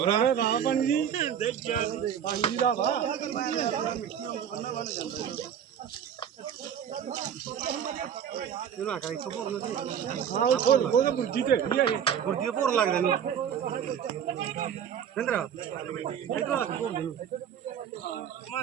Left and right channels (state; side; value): quieter; left; 8.7 dB